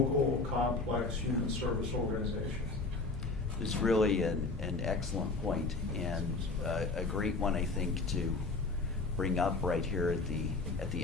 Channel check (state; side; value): quieter; right; 3.7 dB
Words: complex human service organizations. It's really an excellent point, and a great one, I think, to bring up right here at the